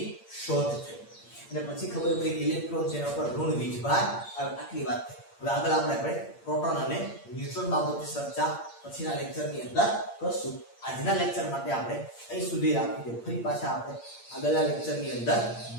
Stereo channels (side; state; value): right; late; 8.7 ms